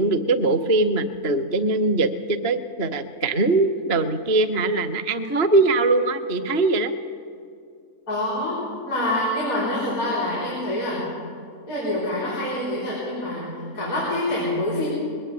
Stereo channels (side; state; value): right; late; 3.0 ms